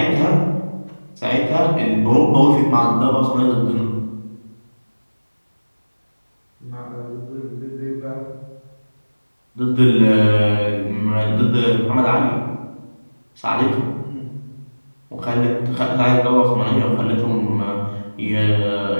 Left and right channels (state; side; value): inverted; both; correlation -1.00